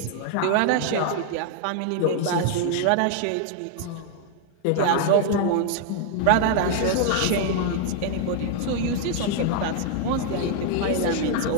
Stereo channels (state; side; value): different; both; correlation 0.00